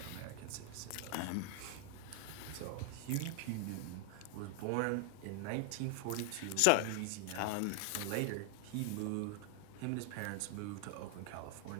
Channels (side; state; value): both; different; correlation 0.00